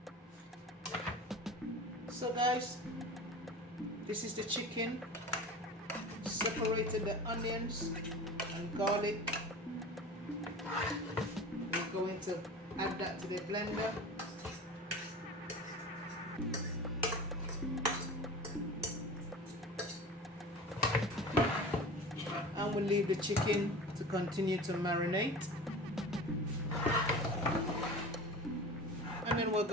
So guys, this is the chicken. Separated the onions and garlic. We're going to add that to the blender. And we'll leave the chicken to continue to marinate. And then we're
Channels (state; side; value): normal; both; correlation 0.35